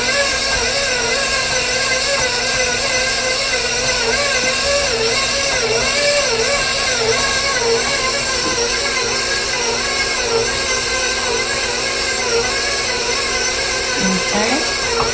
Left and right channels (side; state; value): both; identical; correlation 1.00